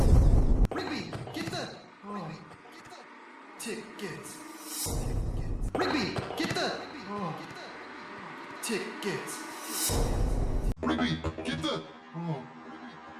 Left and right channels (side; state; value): both; identical; correlation 1.00